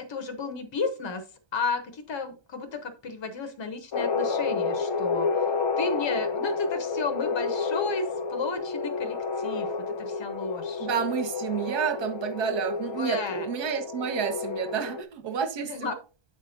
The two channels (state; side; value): late; right; 1.2 ms